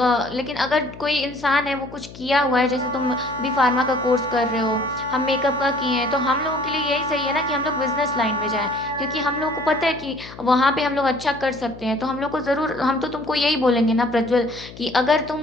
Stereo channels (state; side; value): noise; left; hum, 17 dB below the sound